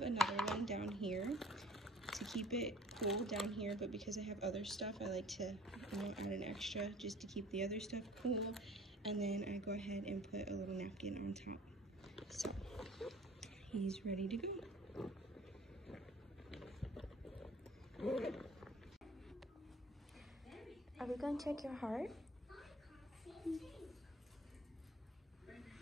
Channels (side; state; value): both; normal; correlation 0.50